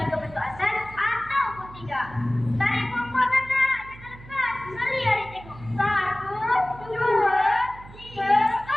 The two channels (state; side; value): noise; right; hum, 18 dB below the sound